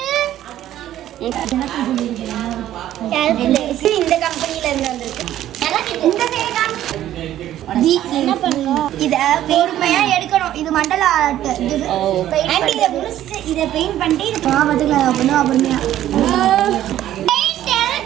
கால்குலேட்டர் இந்த கம்பெனில இருந்து வந்திருக்கு. இந்த என்ன பண்ணணும்? இத பொறுமையா எடுக்கணும். இது மண்டல ஆர்ட். பெயிண்ட் இத முடிச்சிட்டு இத பெயிண்ட் பண்ணிட்டு இது பாவத்துக்கு அப்பணும் பொறுமையா.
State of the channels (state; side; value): quieter; left; 12.6 dB